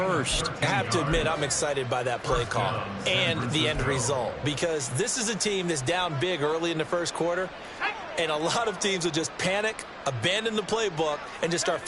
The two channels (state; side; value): identical; both; correlation 1.00